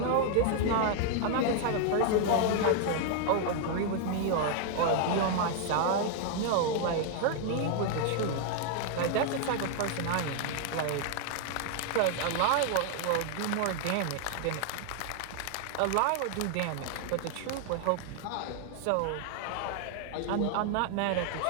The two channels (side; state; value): both; different; correlation 0.00